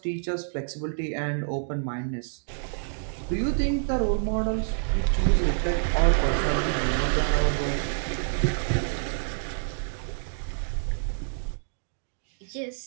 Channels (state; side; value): silent; left; digital silence